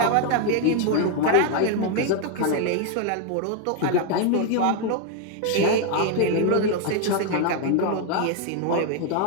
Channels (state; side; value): different; both; correlation 0.01